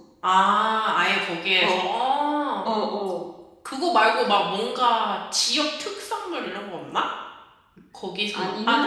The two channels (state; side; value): identical; both; correlation 1.00